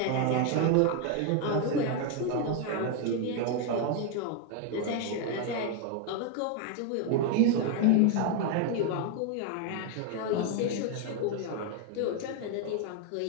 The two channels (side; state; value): both; different; correlation 0.01